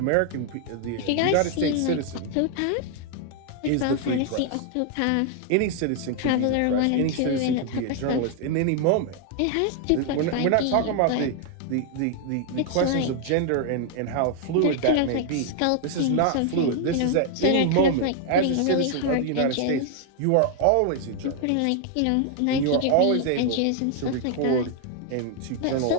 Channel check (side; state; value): both; different; correlation 0.00